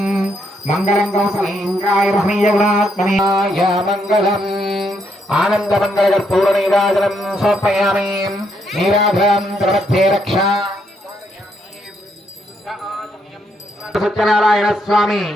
మంగళం కౌసలేంద్రాయ మహనీయగుణాత్మనేయ మంగళం. ఆనందమంగళకర్పూర నీరాజనం సమర్పయామి. నీరాజనం ప్రమధ్యే రక్ష. సత్యనారాయణ స్వామి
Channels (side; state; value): both; normal; correlation 0.75